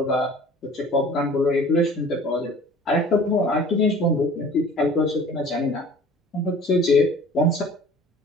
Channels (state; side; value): normal; both; correlation 0.47